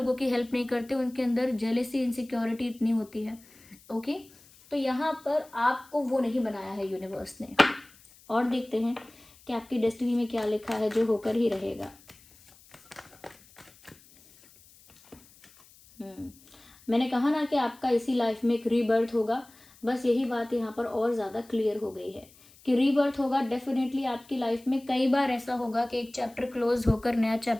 की हेल्प नहीं करते, उनके अंदर जेलेसी, इनसिक्योरिटी इतनी होती है। ओके, तो यहाँ पर आपको वो नहीं बनाया है यूनिवर्स ने। और देखते हैं कि आपकी डेस्टिनी में क्या लिखा है जो होकर ही रहेगा। मैंने कहा ना कि आपका इसी लाइफ में एक रीबर्थ होगा, बस यही बात यहाँ पर और ज़्यादा क्लियर हो गई है कि रीबर्थ होगा डेफिनेटली आपकी लाइफ में। कई बार ऐसा होगा कि एक चैप्टर क्लोज होकर नया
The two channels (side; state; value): left; noise; hiss, 26 dB below the sound